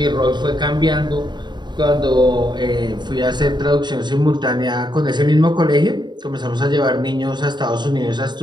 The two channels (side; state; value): left; late; 0.21 ms